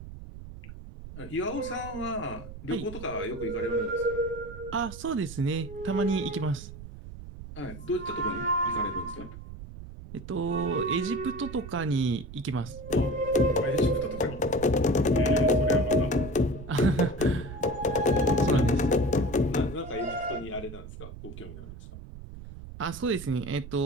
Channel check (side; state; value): right; noise; rumble, 13 dB below the sound